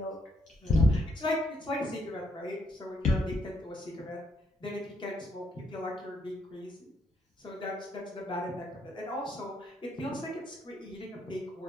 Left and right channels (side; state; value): both; normal; correlation 0.74